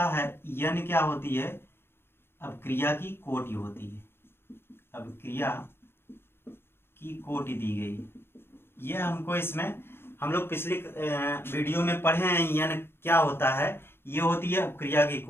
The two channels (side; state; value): right; late; 0.11 ms